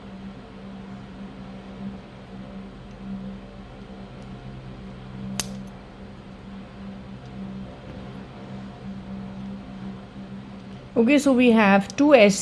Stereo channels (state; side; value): identical; both; correlation 1.00